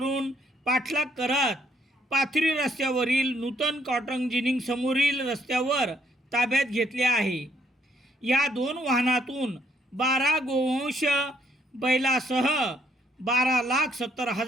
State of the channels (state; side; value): normal; both; correlation 0.70